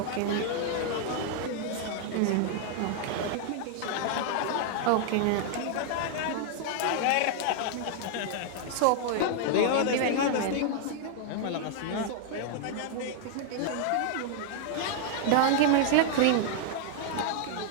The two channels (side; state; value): both; different; correlation 0.00